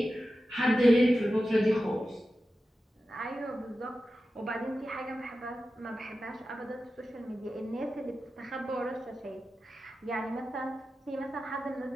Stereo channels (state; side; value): normal; both; correlation 0.93